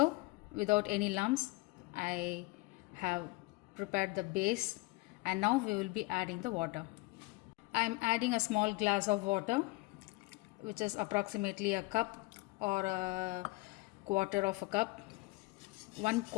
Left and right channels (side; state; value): right; quieter; 23.6 dB